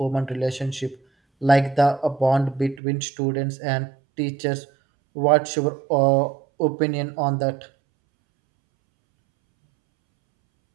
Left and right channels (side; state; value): left; drops out; at 2.8 s